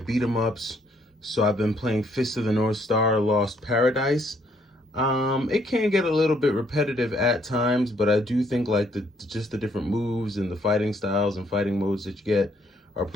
'em ups, so I've been playing Fist of the North Star: Lost Paradise. It can get a little bit repetitive at times, but I do think like just the different moves and the fighting styles and fighting modes that you get are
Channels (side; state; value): both; normal; correlation 0.69